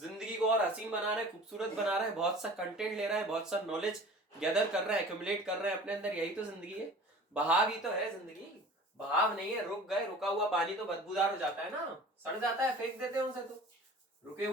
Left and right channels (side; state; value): both; normal; correlation 0.43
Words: को और हसीन बना रहा है, खूबसूरत बना रहा है, बहुत सा कंटेंट ले रहा है, बहुत सा नॉलेज गैदर कर रहा है, एक्यूमुलेट कर रहा है अपने अंदर। यही तो जिंदगी है। बहाव ही तो है जिंदगी। बहाव नहीं है, रुक गए। रुका हुआ पानी तो बदबूदार हो जाता है ना, सड़ जाता है, फेंक देते हैं उसे तो। रुके